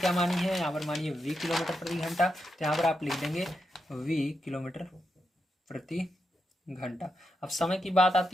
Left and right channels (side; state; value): both; normal; correlation 0.85